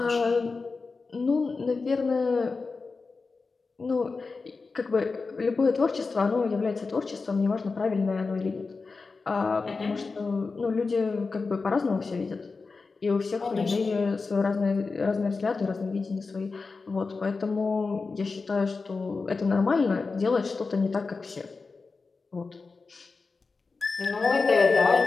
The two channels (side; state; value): right; quieter; 4.2 dB